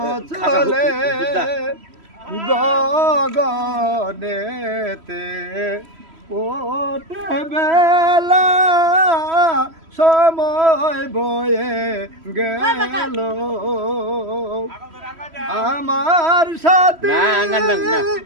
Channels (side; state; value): left; late; 3.1 ms